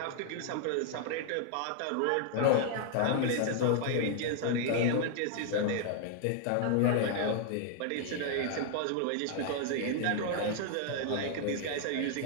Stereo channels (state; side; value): different; both; correlation 0.00